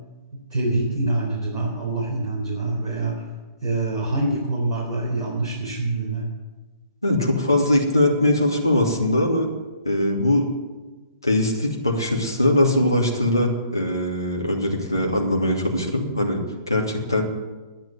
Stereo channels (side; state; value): both; inverted; correlation -0.65